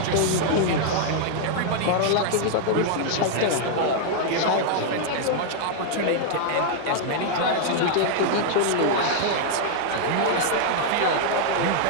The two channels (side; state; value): both; different; correlation -0.01